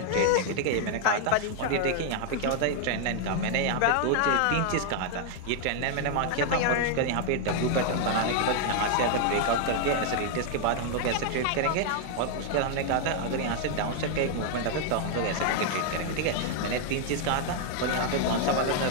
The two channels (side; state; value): both; different; correlation 0.00